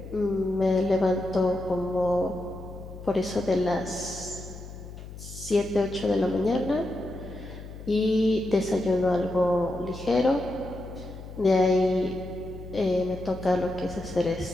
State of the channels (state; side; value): noise; left; hum, 13 dB below the sound